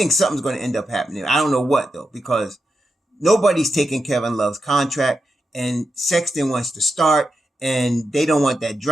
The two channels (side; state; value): both; normal; correlation 0.87